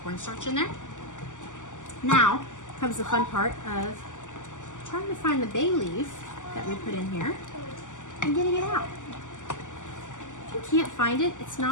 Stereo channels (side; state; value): right; late; 0.87 ms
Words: cornstarch in there. Now comes the fun part of trying to find the bay leaf that we put in here and getting it out. If you can't find it, it's